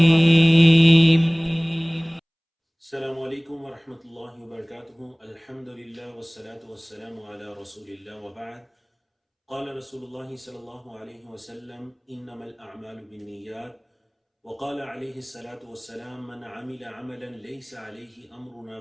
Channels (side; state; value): both; identical; correlation 1.00